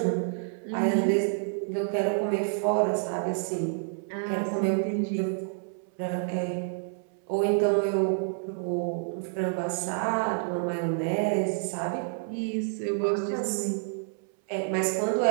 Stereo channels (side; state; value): left; silent; 59 dB below the other